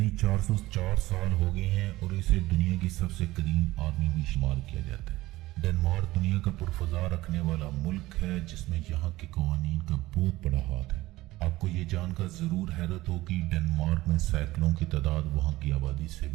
404 سال ہو گئے ہیں، اور اسے دنیا کی سب سے قدیم آرمی بھی شمار کیا جاتا ہے۔ ڈنمارک دنیا کا پرفضا رکھنے والا ملک ہے، جس میں یہاں کے قوانین کا بہت بڑا ہاتھ ہے۔ آپ کو یہ جان کر ضرور حیرت ہو کہ ڈنمارک میں سائیکلوں کی تعداد وہاں کی آبادی سے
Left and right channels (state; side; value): quieter; left; 17.8 dB